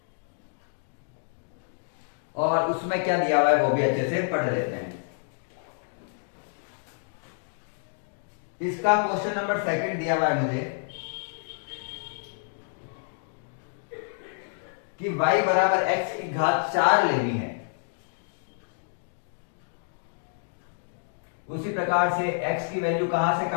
और उसमें क्या दिया हुआ है वो भी अच्छे से पढ़ लेते हैं। इसका क्वेश्चन नंबर 2 दिया हुआ है मुझे कि y बराबर x की घात 4 लेनी है। उसी प्रकार से x की वैल्यू कहां से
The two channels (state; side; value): silent; right; digital silence